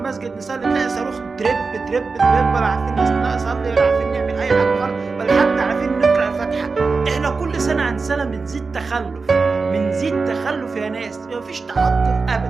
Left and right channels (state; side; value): quieter; left; 4.3 dB